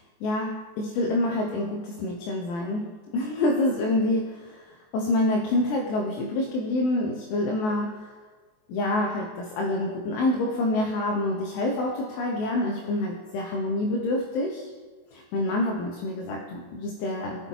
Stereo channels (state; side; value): late; right; 23 ms